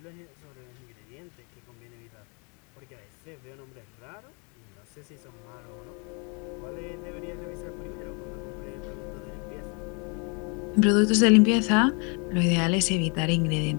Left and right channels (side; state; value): right; quieter; 34.4 dB